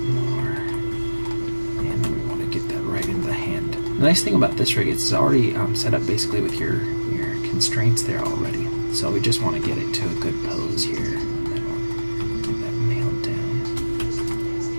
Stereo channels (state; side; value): inverted; both; correlation -1.00